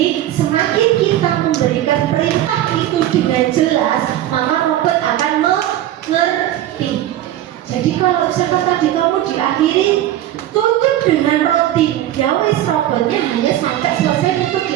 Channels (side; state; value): left; quieter; 13.0 dB